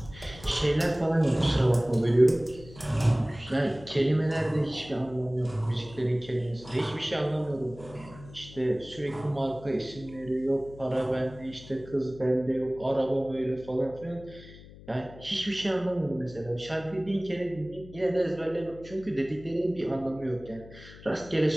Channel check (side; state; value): left; noise; hum, 18 dB below the sound